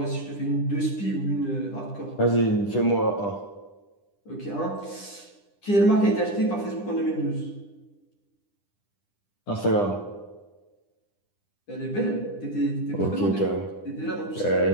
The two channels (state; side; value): late; right; 10 ms